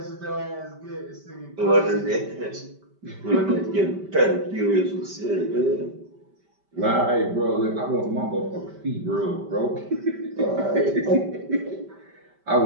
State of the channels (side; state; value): left; late; 5.1 ms